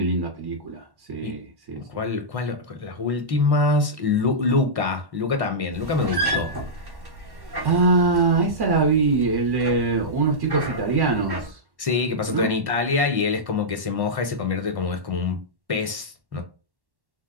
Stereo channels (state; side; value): late; left; 1.1 ms